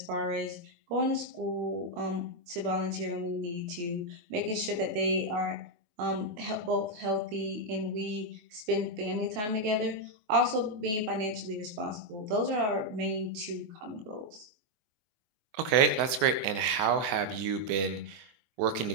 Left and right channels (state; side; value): late; left; 24 ms